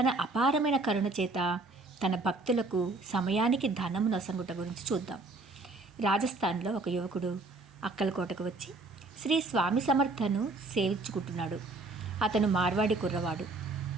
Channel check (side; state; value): left; quieter; 3.3 dB